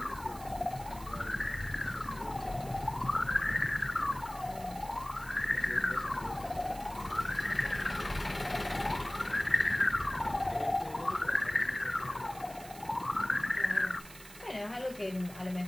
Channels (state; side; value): noise; right; hiss, 17 dB below the sound